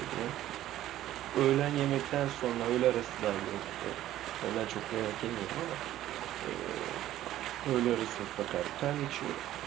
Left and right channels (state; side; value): quieter; left; 13.5 dB